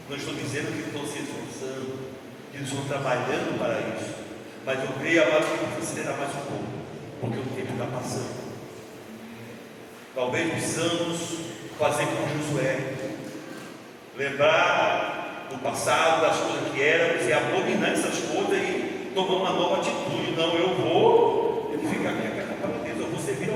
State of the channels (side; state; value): both; identical; correlation 1.00